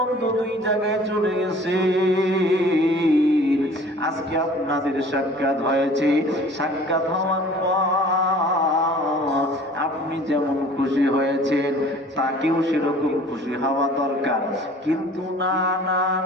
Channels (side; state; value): both; normal; correlation 0.48